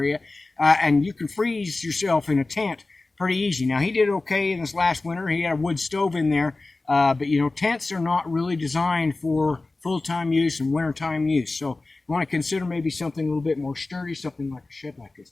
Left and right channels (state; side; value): quieter; right; 3.3 dB